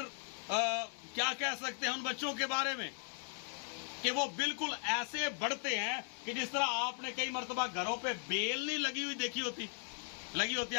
کیا کہہ سکتے ہیں ان بچوں کے بارے میں کہ وہ بالکل ایسے بڑھتے ہیں کہ جس طرح آپ نے کئی مرتبہ گھروں پہ بیل نہیں لگی ہوئی دیکھی ہوتی، لگی ہوتی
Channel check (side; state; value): right; silent; 53 dB below the other